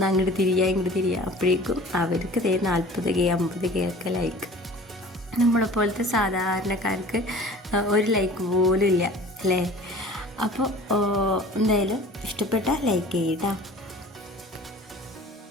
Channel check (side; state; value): both; normal; correlation 0.44